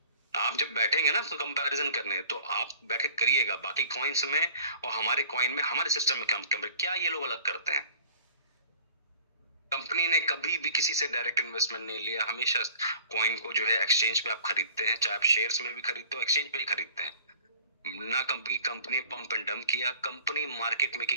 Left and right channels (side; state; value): both; inverted; correlation -0.48